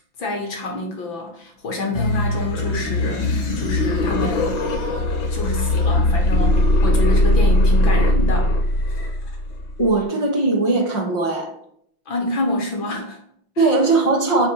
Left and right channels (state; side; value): late; right; 6.0 ms